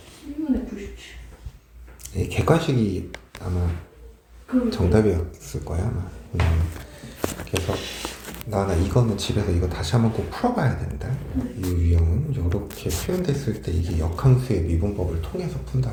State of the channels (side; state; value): both; identical; correlation 1.00